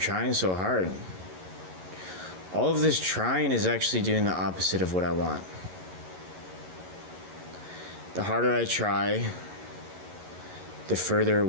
so hard, all of this trying is actually doing the opposite of what I want. The harder I try, the further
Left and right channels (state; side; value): late; left; 11 ms